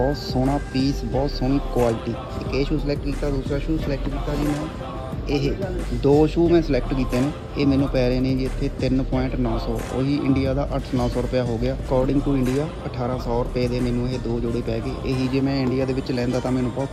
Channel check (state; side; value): identical; both; correlation 1.00